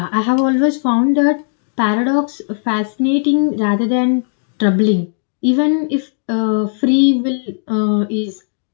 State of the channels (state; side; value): silent; right; digital silence